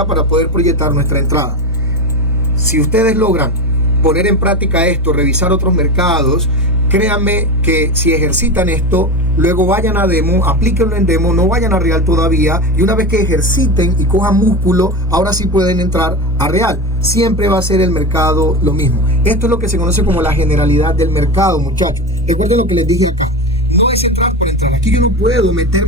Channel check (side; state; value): both; normal; correlation 0.22